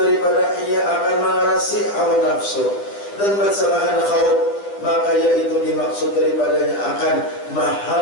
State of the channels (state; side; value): late; right; 10 ms